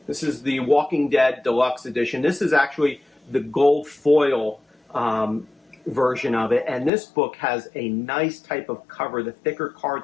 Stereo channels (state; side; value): drops out; right; at 6.9 s